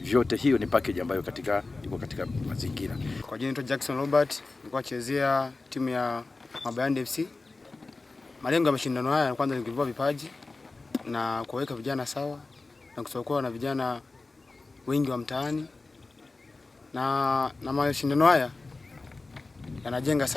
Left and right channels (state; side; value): quieter; right; 3.5 dB